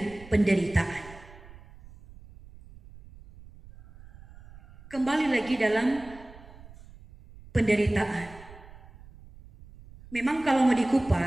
penderitaan. Kembali lagi dalam penderitaan. Memang kalau mau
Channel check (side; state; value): right; noise; rumble, 20 dB below the sound